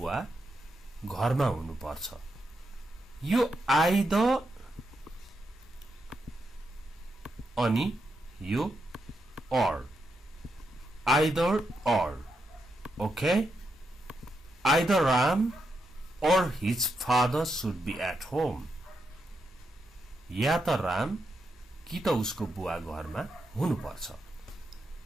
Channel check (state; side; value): normal; both; correlation 0.83